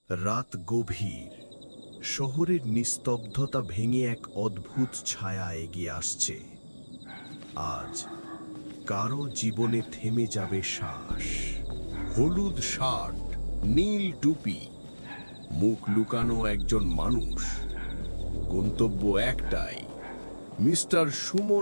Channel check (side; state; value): both; inverted; correlation -1.00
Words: রাত গভীর, শহরের নিস্তব্ধতা ভেঙে এক অদ্ভুত ছায়া এগিয়ে আসছে। আজ কারো জীবনে থেমে যাবে শ্বাস। হলুদ শার্ট, নীল টুপি, মুখ লুকানো একজন মানুষ। গন্তব্য একটাই, মিস্টার